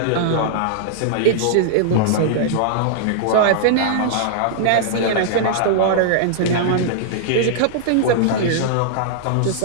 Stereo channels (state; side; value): different; both; correlation -0.01